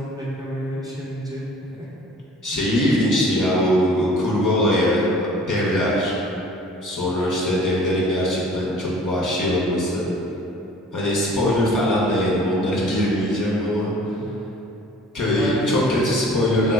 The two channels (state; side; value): normal; both; correlation 0.49